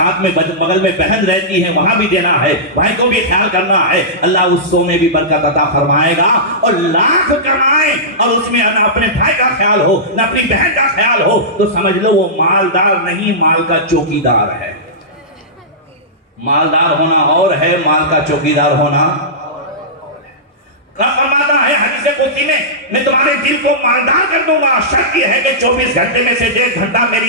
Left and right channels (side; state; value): both; normal; correlation -0.16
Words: میں بغل میں بہن رہتی ہے وہاں بھی دینا ہے، بھائی کو بھی خیال کرنا ہے، اللہ اس 100 میں بھی برکت عطا فرمائے گا۔ اور لاکھ کمائیں اور اس میں نہ اپنے بھائی کا خیال ہو نہ اپنی بہن کا خیال ہو، تو سمجھ لو وہ مالدار نہیں، مال کا چوکیدار ہے۔ مالدار ہونا اور ہے، مال کا چوکیدار ہونا۔ فرماتا ہے حدیث قدسی میں تمہارے دل کو مالدار کر دوں گا، شرط یہ ہے کہ 24 گھنٹے میں سے 1.5 گھنٹہ